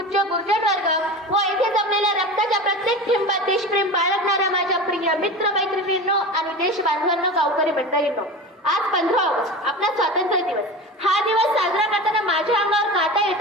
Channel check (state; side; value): normal; both; correlation 0.30